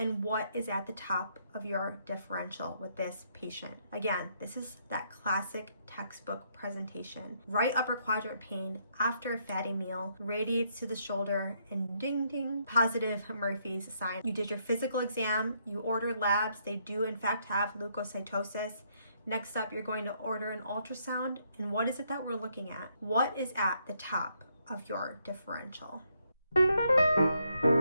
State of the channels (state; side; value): inverted; both; correlation -0.73